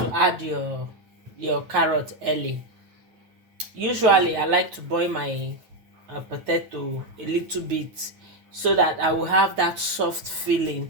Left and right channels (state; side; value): late; left; 9.2 ms